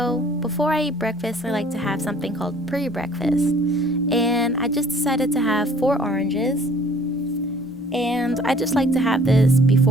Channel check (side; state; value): both; normal; correlation 0.54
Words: before I eat breakfast, I like to have something called pre-breakfast. And I just decided to have 4 oranges. And I just like to have this